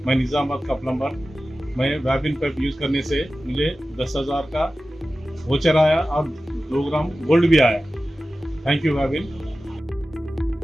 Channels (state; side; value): normal; both; correlation 0.95